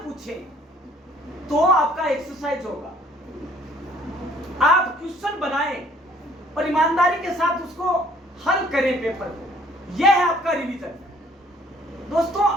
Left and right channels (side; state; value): both; normal; correlation 0.59